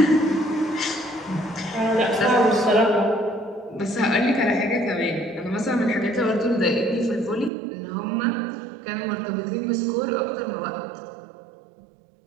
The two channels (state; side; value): drops out; left; at 7.5 s